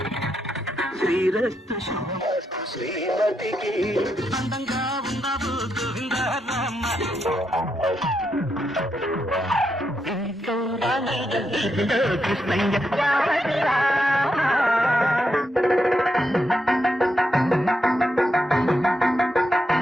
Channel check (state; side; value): normal; both; correlation 0.82